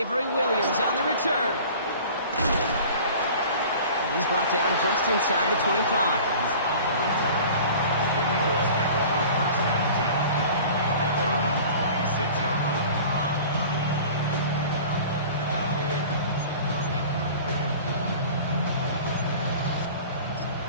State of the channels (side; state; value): both; inverted; correlation -0.43